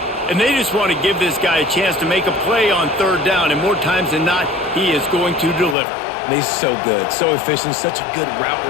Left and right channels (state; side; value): drops out; right; at 5.8 s